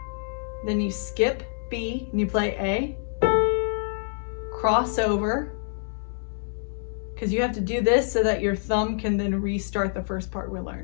Then you skip B, and you play A. Cross over, because you have to do this so that your thumb can then restart the first part we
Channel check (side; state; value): right; silent; digital silence